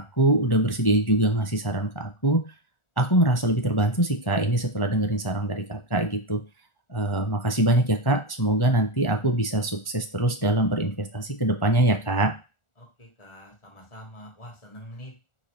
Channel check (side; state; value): right; late; 1.4 ms